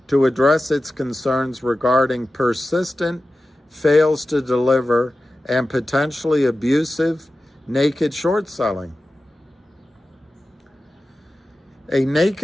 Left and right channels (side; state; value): both; normal; correlation 0.94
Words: to address its concerns regarding persistent fails to deliver and potentially abusive naked short selling. A